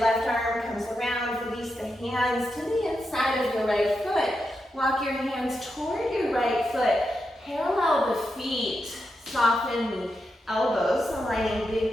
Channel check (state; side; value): normal; both; correlation 0.86